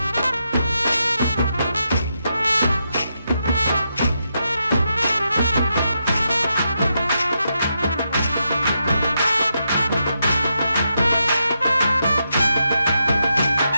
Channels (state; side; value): inverted; both; correlation -0.84